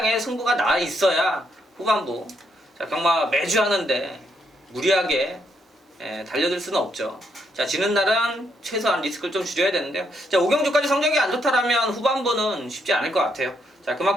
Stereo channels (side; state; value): both; normal; correlation 0.76